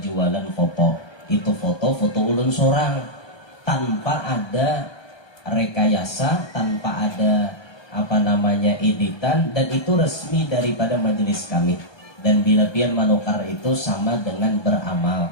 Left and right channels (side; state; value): right; late; 1.3 ms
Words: foto. Itu foto ulun seorang tanpa ada rekayasa, tanpa ada editan, dan itu resmi daripada majelis kami. Dan bila pian manukar itu sama dengan